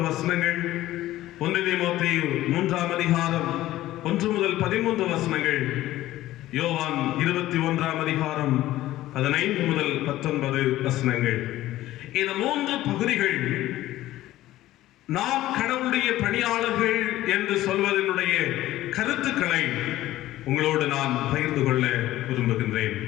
வசனங்கள், 1 தீமோத்தேயு 3ஆம் அதிகாரம் 1 முதல் 13 வசனங்கள், யோவான் 21ஆம் அதிகாரம் 15 முதல் 19 வசனங்கள். இந்த 3 பகுதிகள் நாம் கடவுளுடைய பணியாளர்கள் என்று சொல்வதனுடைய கருத்துக்களை உங்களோடு நான் பகிர்ந்து கொள்ள விரும்புகின்றேன்.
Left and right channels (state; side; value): quieter; right; 15.2 dB